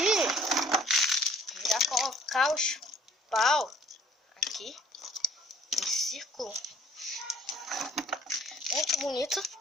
Já colocar os pau aqui em círculo. Muito bonito.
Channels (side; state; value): both; normal; correlation 0.57